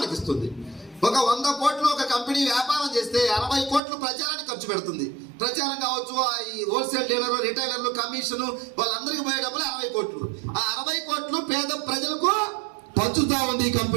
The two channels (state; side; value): drops out; left; at 3.8 s